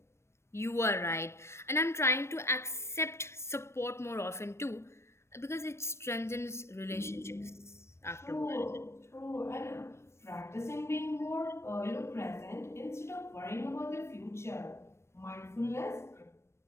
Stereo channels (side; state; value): right; late; 0.13 ms